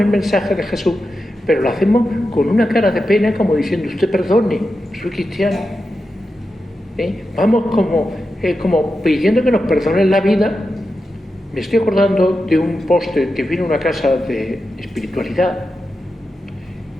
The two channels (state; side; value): normal; both; correlation 0.90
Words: mensaje de Jesús, pero lo hacemos con una cara de pena, como diciendo: usted perdone, soy cristiano. Vamos como pidiendo que nos perdonen la vida. Me estoy acordando de un póster que vino a una casa de espiritualidad